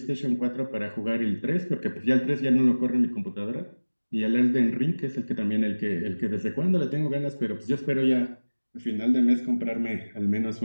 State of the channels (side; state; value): both; inverted; correlation -1.00